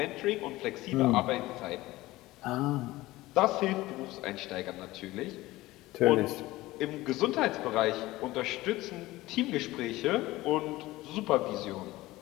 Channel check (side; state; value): right; quieter; 18.3 dB